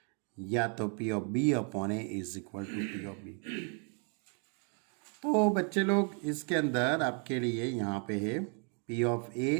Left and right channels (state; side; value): quieter; left; 39.8 dB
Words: या तो P of B upon A is equal to P of B। तो बच्चे लोग इसके अंदर आपके लिए यहाँ पे है P of A